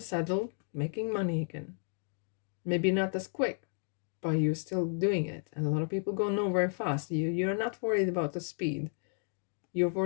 saddle making money again. Maybe not as quick, but you're still doing it. And a lot of people go nowhere fast. You're not worried about the speed. You're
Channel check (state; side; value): silent; right; 56 dB below the other